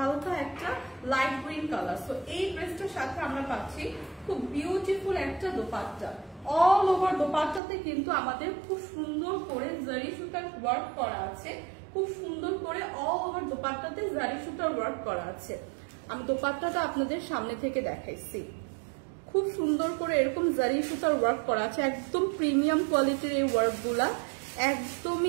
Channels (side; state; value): left; drops out; at 7.6 s